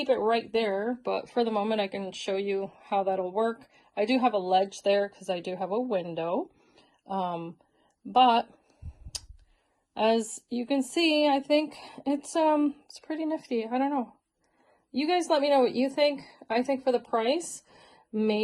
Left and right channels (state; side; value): identical; both; correlation 1.00